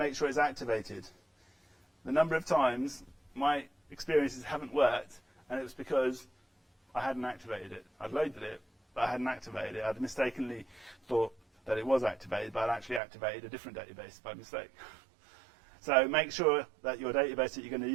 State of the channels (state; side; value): drops out; left; at 13.0 s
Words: sure it's activated. The number of times my experiences haven't worked, and it was because I hadn't activated it. I'd loaded it, but I hadn't activated it. I'd mistakenly thought that it was activated, but I'd actually activated a different database by mistake. So make sure that your database that you're going to